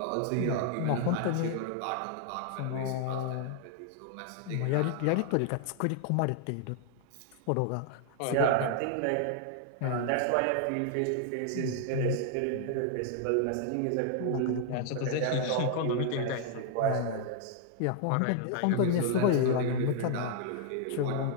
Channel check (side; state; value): both; different; correlation 0.00